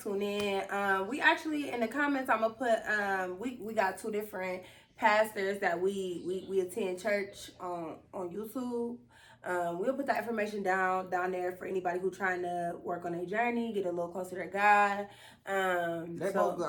in. We actually in the comments, I'm gonna put we got 2 different pastors that we attend church on YouTube. We'll put that information down there for anybody who trying to work on their journey, get a little closer to God. They both good.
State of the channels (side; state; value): both; identical; correlation 1.00